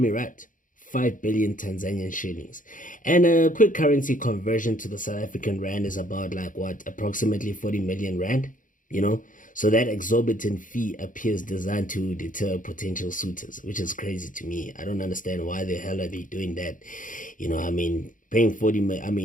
right. 5 billion Tanzanian shillings. And a quick currency conversion to the South African rand is about like what, approximately 40 million rand, you know? So that exorbitant fee appears designed to deter potential suitors, which is crazy to me. I don't understand why the hell are they doing that. I mean, paying 40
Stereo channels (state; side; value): late; right; 0.38 ms